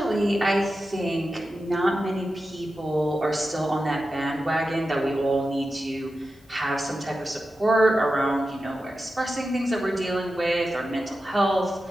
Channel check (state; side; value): normal; both; correlation 0.92